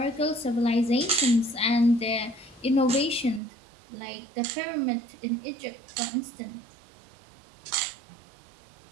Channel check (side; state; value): left; drops out; at 3.4 s